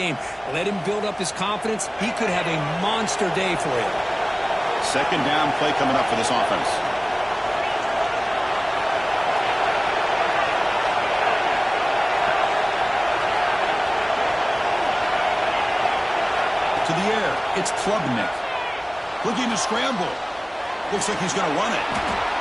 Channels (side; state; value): both; identical; correlation 1.00